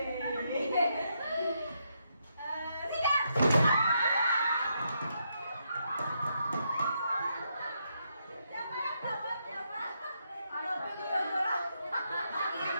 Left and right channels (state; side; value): inverted; both; correlation -0.79